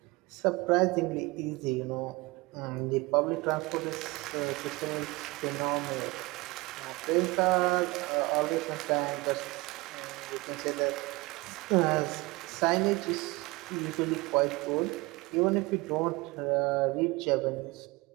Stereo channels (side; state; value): left; quieter; 23.3 dB